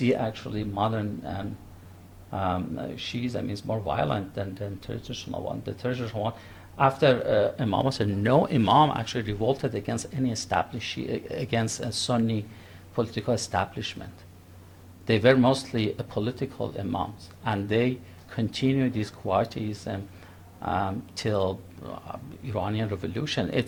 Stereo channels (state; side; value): identical; both; correlation 1.00